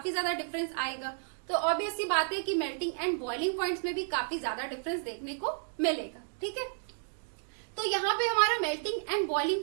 ज्यादा डिफरेंस आएगा। तो ऑब्वियस सी बात है कि मेल्टिंग एंड बॉइलिंग पॉइंट्स में भी काफी ज्यादा डिफरेंस देखने को मिलेगा। ठीक है, तो यहाँ पे हमारा मेल्टिंग एंड बॉइलिंग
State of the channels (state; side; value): silent; left; digital silence